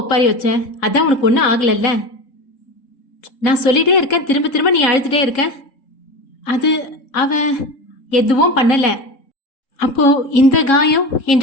வச்ச? அதான் உனக்கு ஒன்றும் ஆகலல்ல? நான் சொல்லிட்டே இருக்கேன், திரும்ப திரும்ப நீ அழுதுட்டே இருக்க. அது அவ எதுவும் பண்ணல. அப்போ இந்த காயம்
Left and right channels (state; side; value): late; right; 3.7 ms